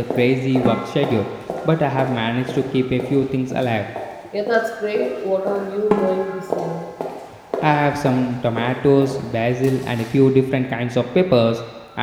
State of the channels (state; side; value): identical; both; correlation 1.00